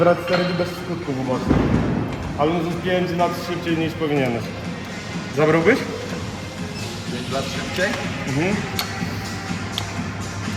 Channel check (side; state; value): both; identical; correlation 1.00